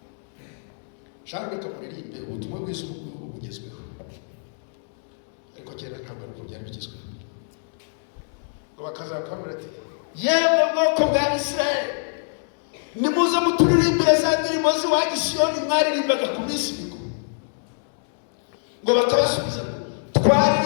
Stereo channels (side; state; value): right; silent; digital silence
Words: Shaka reka muririmbe ubutumwa bwiza bugezweho, ariko kera ntabwo ari byari bigezweho. Ngo bakazakamura ati yewe bwoko bwa Isirayeli, nimuze muturirimbire za ndirimbo z'iwanyu Siyoni mwaririmbaga ku minsi mikuru. Ngo bakabasubiza